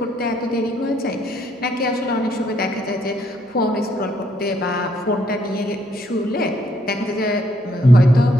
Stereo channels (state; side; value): normal; both; correlation 0.70